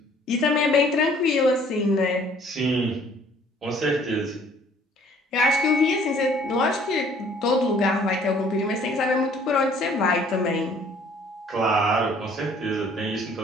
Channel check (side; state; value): both; normal; correlation 0.57